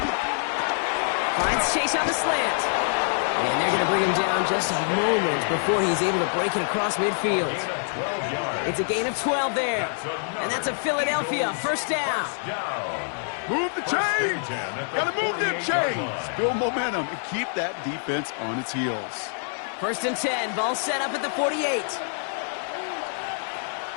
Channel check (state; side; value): silent; right; digital silence